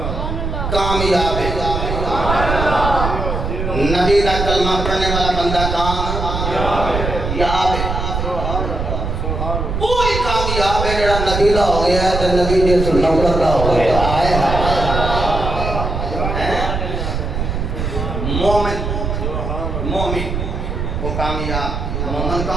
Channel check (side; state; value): right; noise; rumble, 3 dB below the sound